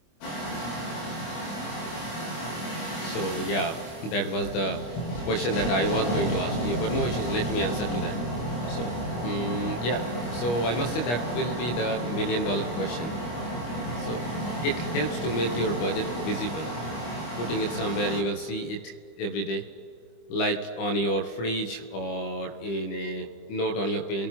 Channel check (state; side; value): late; right; 25 ms